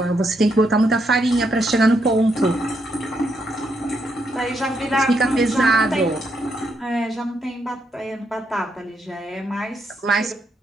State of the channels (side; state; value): both; normal; correlation 0.78